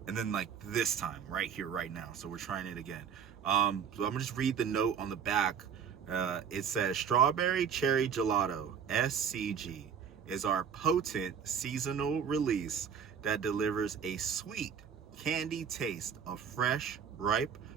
and then like this time right here right now. So we're trying it again. So I'm gonna just read the note on the back. It says Strawberry Cherry Gelato SCG is our potent seasonal release that delivers a sweet candy taste of fresh, ripe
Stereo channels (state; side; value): quieter; left; 7.4 dB